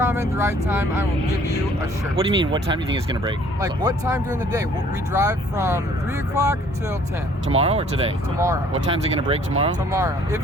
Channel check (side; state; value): both; normal; correlation 0.58